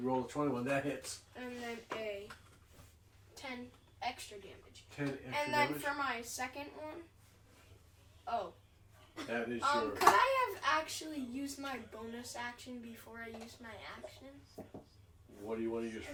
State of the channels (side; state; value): both; identical; correlation 1.00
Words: roll a 21. That hits. And then a 10 extra damage. 10 extra And then damage. for my second one, oh, That is your. could I have actually used my bonus action before I used my action? What do you want to use